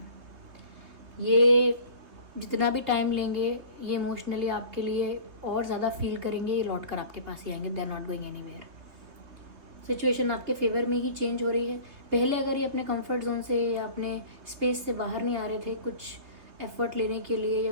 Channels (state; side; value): late; left; 3.3 ms